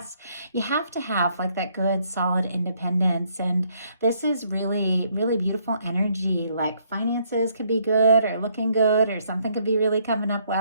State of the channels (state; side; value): inverted; both; correlation -0.69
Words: you have to have like that good, solid independence. And this is really, really beautiful energy. Like finances could be good or looking good, or something could be really coming up